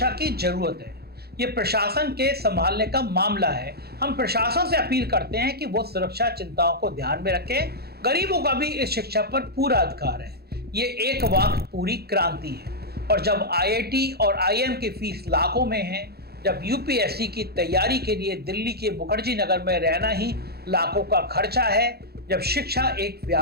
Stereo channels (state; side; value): late; left; 0.46 ms